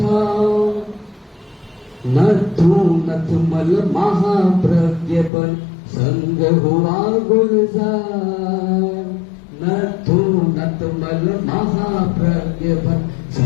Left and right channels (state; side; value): drops out; right; at 5.3 s